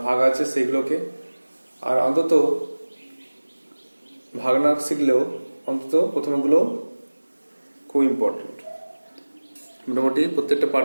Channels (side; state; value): both; inverted; correlation -1.00